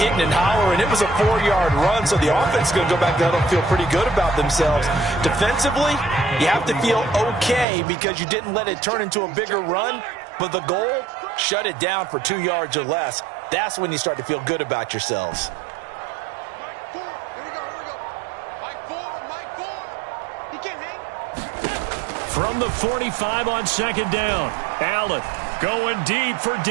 and hollering, it was a 4-yard run, so the offense is going to go back there and feel pretty good about themselves. Defensively, you have to feel okay because you didn't let it turn into a bigger run, but the goal, shut it down for 2 yards or less. That's when you start to feel good about yourselves. From the 45 on second down, Allen going deep for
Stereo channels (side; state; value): left; drops out; at 7.7 s